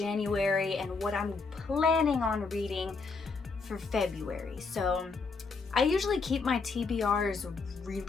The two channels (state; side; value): quieter; right; 4.4 dB